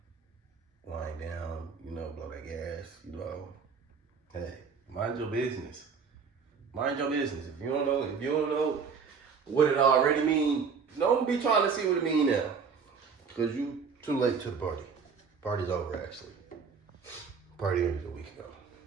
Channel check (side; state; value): left; quieter; 5.8 dB